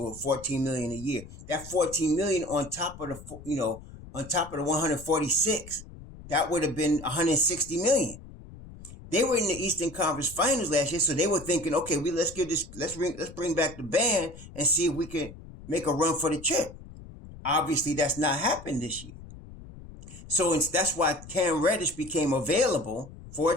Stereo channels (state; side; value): noise; left; rumble, 16 dB below the sound